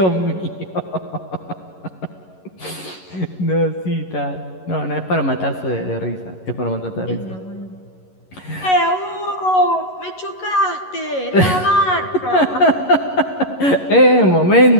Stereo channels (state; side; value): late; right; 11 ms